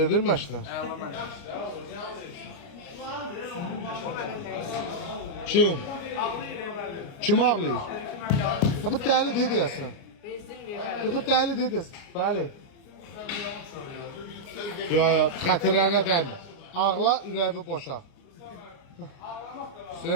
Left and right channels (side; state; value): right; late; 29 ms